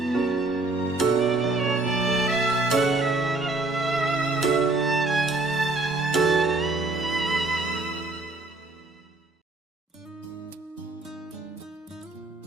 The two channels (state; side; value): quieter; left; 3.1 dB